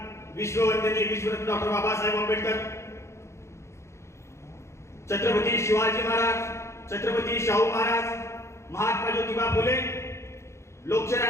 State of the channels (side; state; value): right; late; 0.13 ms